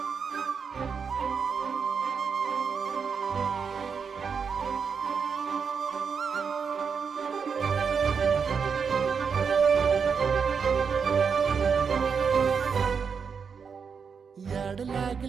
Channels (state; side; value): quieter; left; 6.1 dB